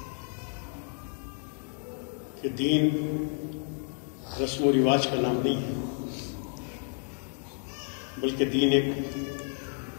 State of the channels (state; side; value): silent; right; 58 dB below the other